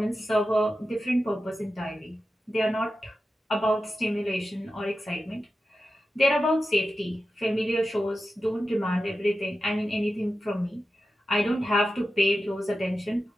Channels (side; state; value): both; normal; correlation 0.92